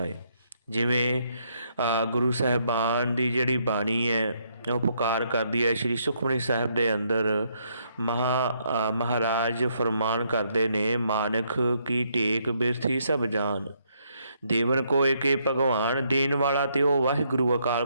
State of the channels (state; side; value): inverted; both; correlation -0.74